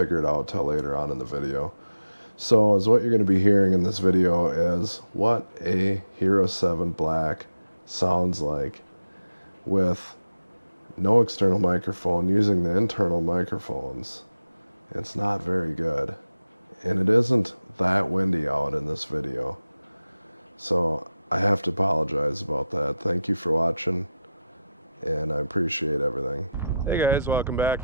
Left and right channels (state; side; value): inverted; both; correlation -0.91